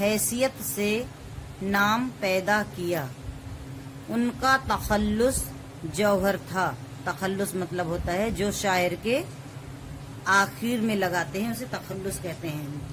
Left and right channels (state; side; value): identical; both; correlation 1.00